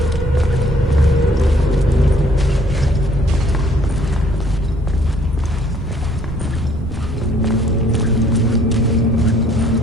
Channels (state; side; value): normal; both; correlation 0.61